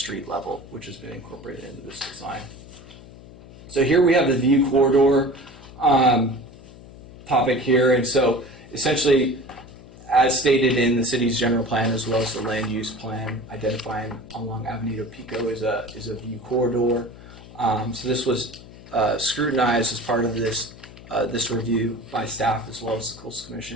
level, which has been incorporated into this design. So here we have the view corridor topic here, and so essentially, as stated in the city's general plan as well as the land use plan, identifying along Avenida Pico is a view corridor. So this was scrutinized as part of this review by staff as well as the Coastal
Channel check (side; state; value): left; noise; hum, 18 dB below the sound